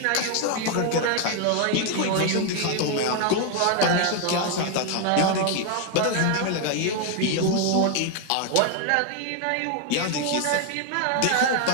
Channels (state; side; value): different; both; correlation 0.00